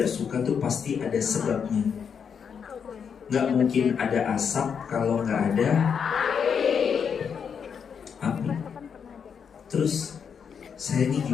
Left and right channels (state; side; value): quieter; right; 6.9 dB